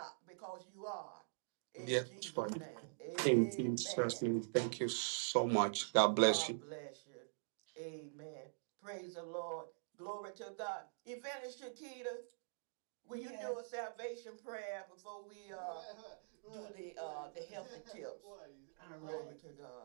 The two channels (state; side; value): silent; left; digital silence